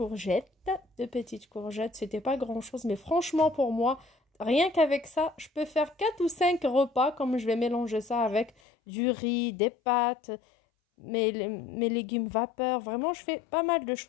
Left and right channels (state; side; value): drops out; right; at 8.5 s